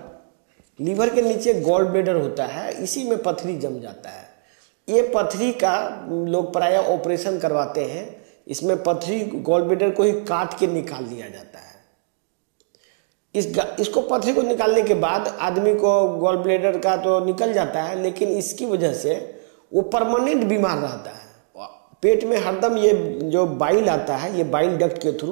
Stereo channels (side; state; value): left; silent; digital silence